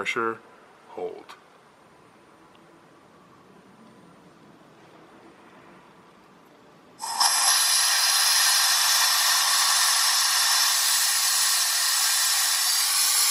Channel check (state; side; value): identical; both; correlation 1.00